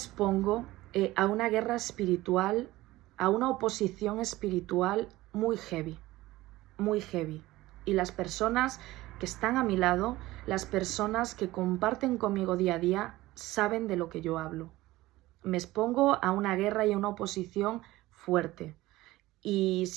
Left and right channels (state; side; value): quieter; left; 17.9 dB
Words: a una guerra espiritual, a una oposición espiritual muy heavy, muy heavy. Y las personas que están a mi lado, las personas que comparten conmigo día a día, saben de lo que yo hablo. Me expongo a una guerra y a una oposición fuerte. Y